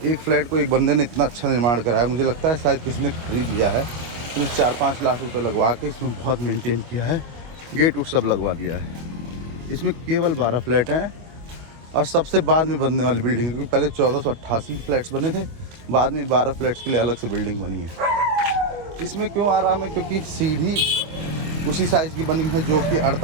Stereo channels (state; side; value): late; left; 25 ms